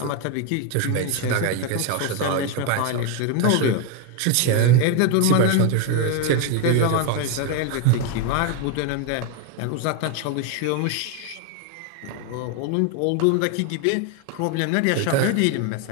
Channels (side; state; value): both; different; correlation 0.01